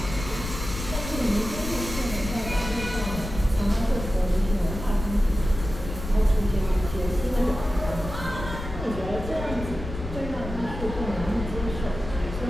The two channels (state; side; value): noise; left; rumble, 8 dB below the sound